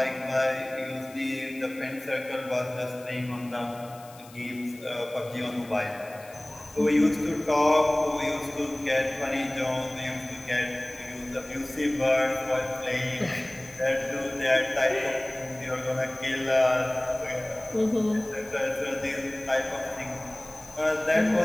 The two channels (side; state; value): left; noise; hiss, 22 dB below the sound